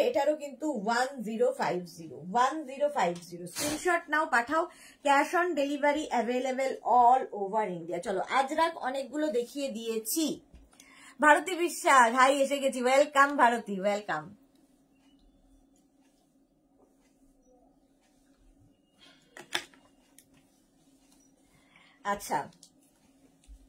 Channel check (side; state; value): both; identical; correlation 1.00